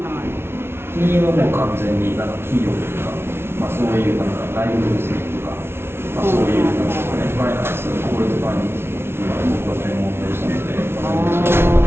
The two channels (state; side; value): late; left; 0.12 ms